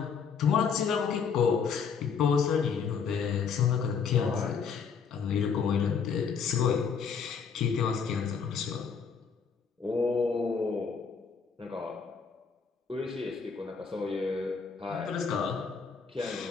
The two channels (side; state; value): right; quieter; 6.1 dB